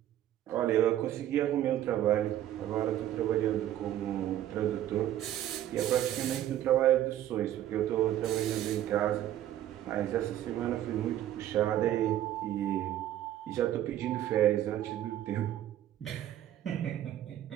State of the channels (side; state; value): left; quieter; 12.3 dB